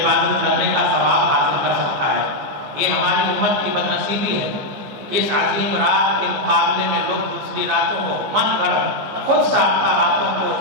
کرنے کا ثواب حاصل کر سکتا ہے۔ یہ ہماری امت کی بدنصیبی ہے کہ اس عظیم رات کے مقابلے میں لوگ دوسری راتوں کو من گھڑت خود ساختہ راتوں کو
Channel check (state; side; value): late; left; 15 ms